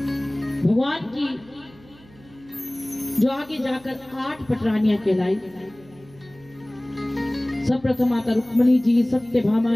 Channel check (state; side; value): noise; right; hum, 25 dB below the sound